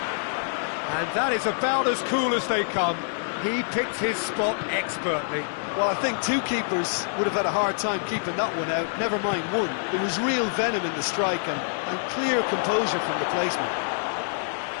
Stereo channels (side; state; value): right; silent; digital silence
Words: And that is about as cool as they come. He picked his spot expertly. Well, I think two keepers would have had a hard time keeping that one out, never mind one. There was real venom in the strike and clear composure from the placement.